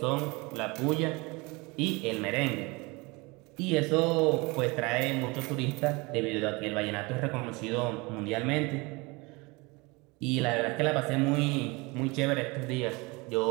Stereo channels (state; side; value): quieter; left; 25.6 dB